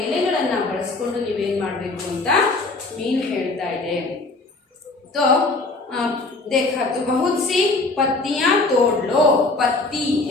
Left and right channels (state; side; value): quieter; right; 3.3 dB